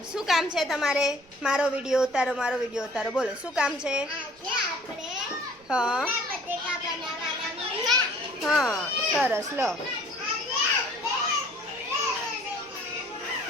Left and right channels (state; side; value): noise; right; rumble, 29 dB below the sound